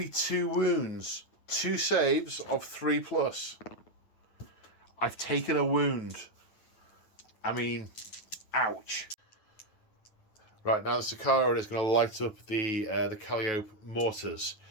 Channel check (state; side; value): late; right; 9.2 ms